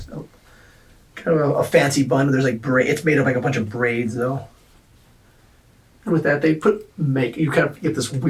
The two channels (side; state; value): both; identical; correlation 1.00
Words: kind of a fancy bun. There's like it's made of like a bunch of braids though. And with that, they put you kind of get this